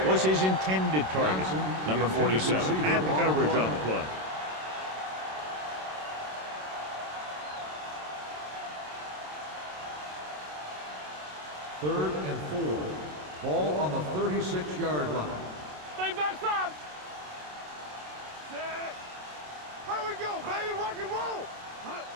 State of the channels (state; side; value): late; left; 27 ms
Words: was his intended target. Number 47 had the coverage on the play. Third and 4. Ball on the 36-yard line. Stay backside. Here we go, baby. Rock and roll.